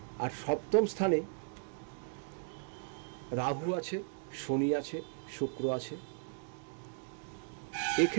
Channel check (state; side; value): silent; left; digital silence